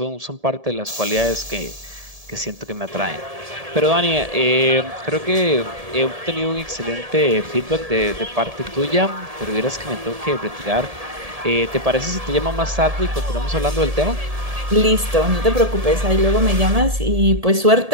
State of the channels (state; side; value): late; left; 1.7 ms